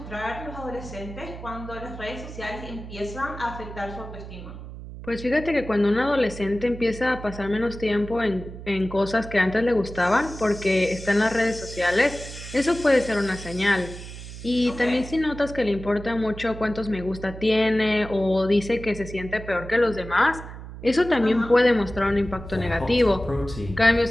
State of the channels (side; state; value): right; noise; hum, 12 dB below the sound